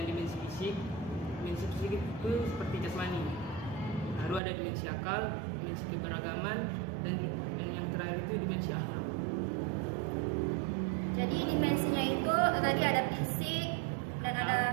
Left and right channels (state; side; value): drops out; left; at 4.4 s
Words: dimensi fisik. Dimensi fisik itu seperti jasmani, lalu ada dimensi akal, dimensi keberagaman, dan yang terakhir itu dimensi akhlak. Jadi dimensinya itu tadi ada fisik dan ada